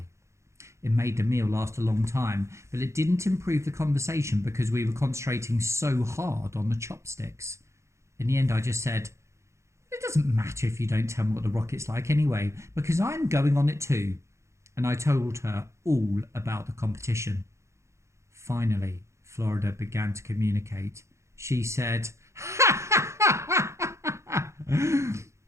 It made the meal last a long time, but it didn't improve the conversation because we were concentrating so hard on the chopsticks. In the end, I just said, "It doesn't matter if you don't tell me what the rocket's like anyway, because I'm going on it too." And I told her all about the competition. Finally, Florida began to communicate. She said,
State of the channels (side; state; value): left; late; 0.14 ms